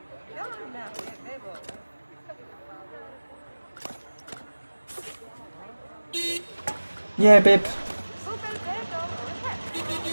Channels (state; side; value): inverted; both; correlation -1.00